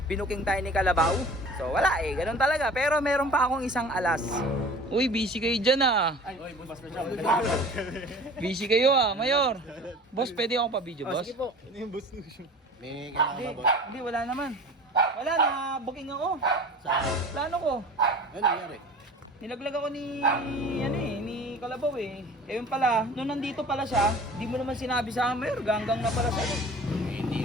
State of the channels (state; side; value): normal; both; correlation 0.42